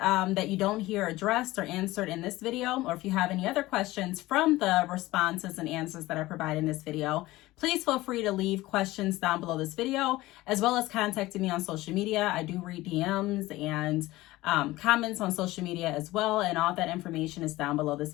you don't hear addressed or answered in this video, or if you have any other questions from the responses and answers that I provide in this video, please feel free to leave questions down below this video, as well as contacting me on social media. I do read DMs and comments on social media as well, and all that information is down below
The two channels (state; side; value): quieter; right; 18.3 dB